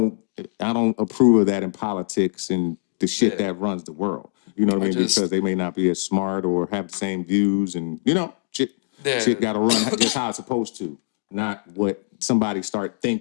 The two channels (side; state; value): right; silent; digital silence